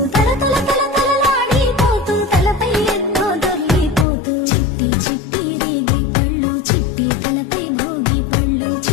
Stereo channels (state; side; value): drops out; right; at 4.0 s